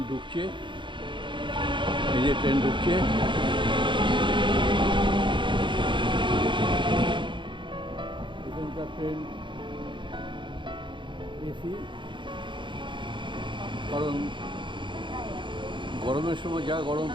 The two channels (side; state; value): left; late; 0.23 ms